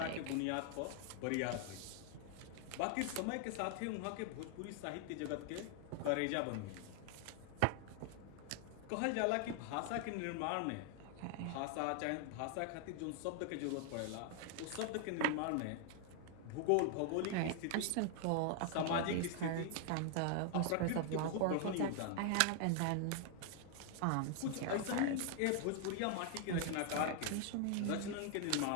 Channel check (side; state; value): both; different; correlation 0.00